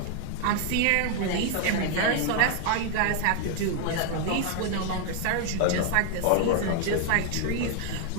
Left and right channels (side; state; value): both; different; correlation 0.00